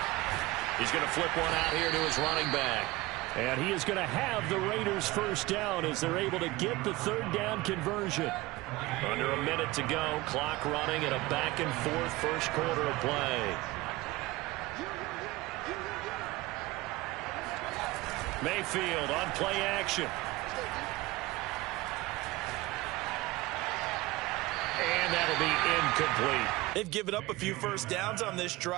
He's going to flip one out here to his running back. And he is going to have the Raiders first down as they're able to get the 3rd down conversion. Under a minute to go, clock running at a back-and-forth first quarter of play. Mayfield on play action. And that'll be incomplete. They've given up a few first downs on this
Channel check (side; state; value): left; quieter; 20.2 dB